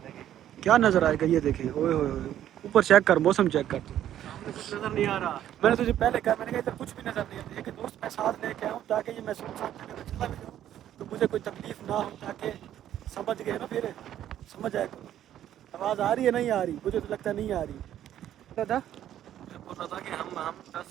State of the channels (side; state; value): left; quieter; 11.4 dB